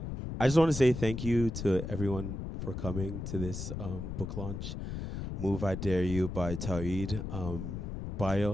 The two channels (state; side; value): noise; left; rumble, 6 dB below the sound